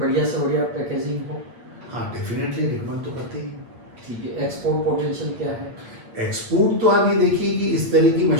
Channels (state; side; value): late; left; 8.5 ms